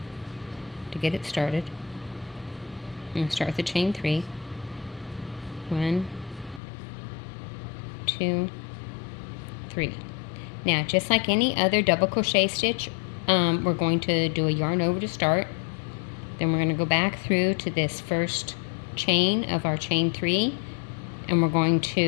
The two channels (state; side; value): drops out; right; at 6.6 s